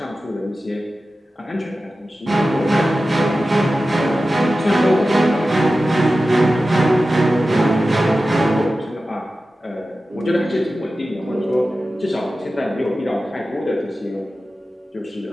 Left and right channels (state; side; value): normal; both; correlation 0.94